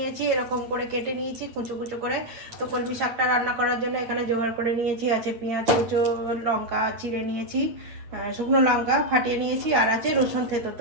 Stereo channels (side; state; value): left; late; 8.9 ms